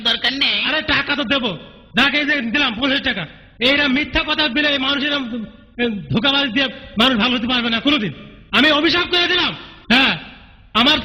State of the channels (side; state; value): both; identical; correlation 1.00